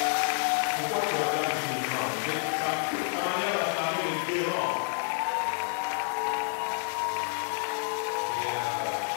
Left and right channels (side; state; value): right; silent; 57 dB below the other